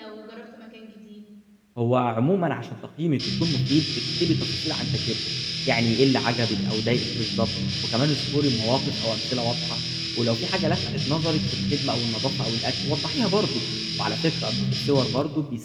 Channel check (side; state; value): both; identical; correlation 1.00